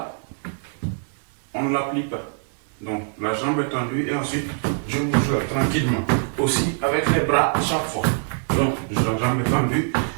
on ne la plie pas. Donc la jambe est tendue et ensuite je bouge tranquillement. Aussi avec les bras à chaque fois. Donc la jambe est tendue,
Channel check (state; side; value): silent; left; 63 dB below the other